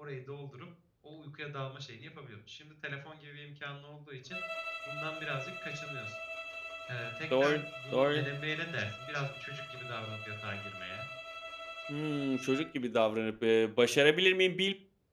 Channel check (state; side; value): identical; both; correlation 1.00